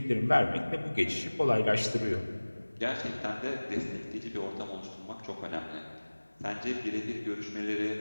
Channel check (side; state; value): both; inverted; correlation -1.00